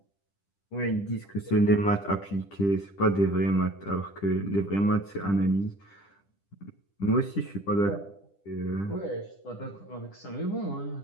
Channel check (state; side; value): late; right; 10 ms